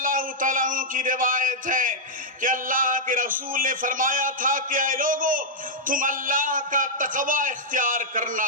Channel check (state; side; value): normal; both; correlation -0.08